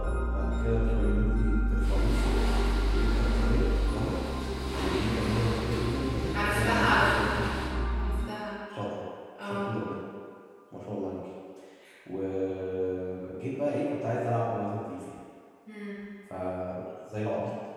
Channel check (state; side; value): identical; both; correlation 1.00